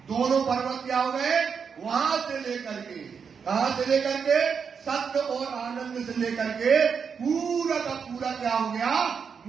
दोनों पर्वत क्या हो गए? वहां से लेकर के, कहां से लेकर के? सत्य और आनंद से लेकर के पूरा का पूरा क्या हो गया?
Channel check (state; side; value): quieter; left; 6.3 dB